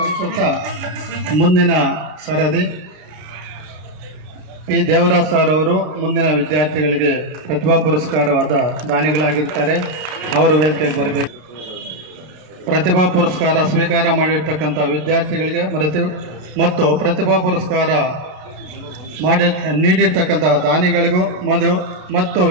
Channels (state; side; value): late; left; 33 ms